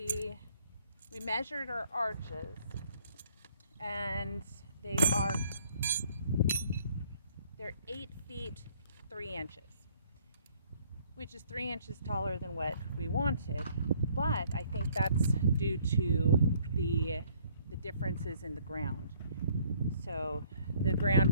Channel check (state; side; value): inverted; both; correlation -0.62